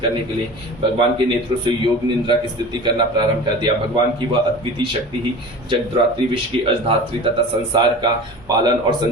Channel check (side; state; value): both; normal; correlation 0.36